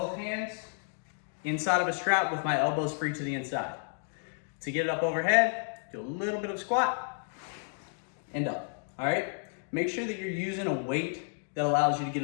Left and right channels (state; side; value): silent; right; 57 dB below the other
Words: hands inside of a strap with my elbows free to the inside. To get it up overhead, do a little bit of squat and up, all right? Make sure that you're using a weight that allows you to get